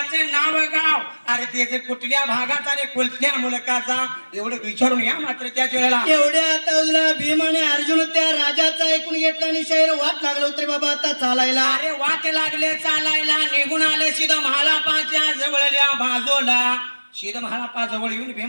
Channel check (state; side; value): inverted; both; correlation -1.00